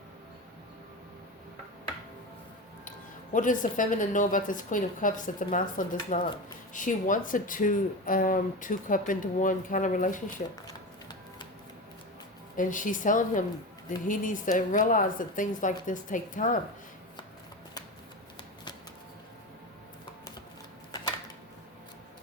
What does the feminine know about this Queen of Cups that the masculine does not? She wants a two cup into one kind of relationship. And she's telling him that he needs to realize that things like this take time.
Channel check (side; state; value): both; normal; correlation 0.24